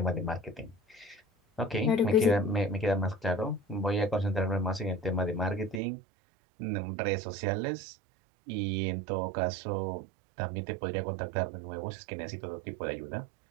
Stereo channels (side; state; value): left; drops out; at 5.8 s